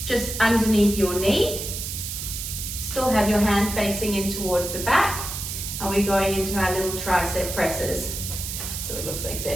just underneath your knee. Still have your hand facing in towards the back, and we're going into our little tricep presses. So it looks like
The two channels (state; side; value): noise; right; hiss, 6 dB below the sound